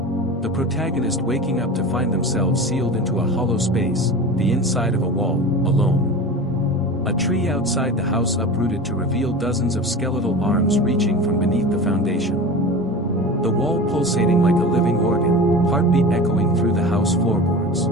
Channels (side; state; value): both; normal; correlation 0.32